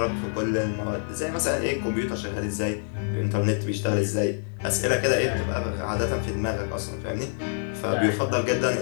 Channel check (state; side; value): silent; right; digital silence